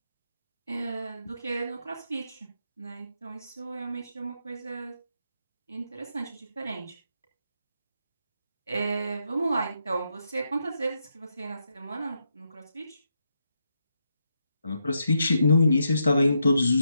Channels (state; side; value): inverted; both; correlation -0.81